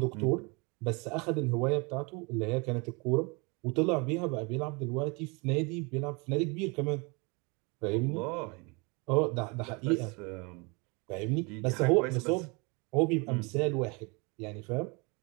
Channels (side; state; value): left; quieter; 29.9 dB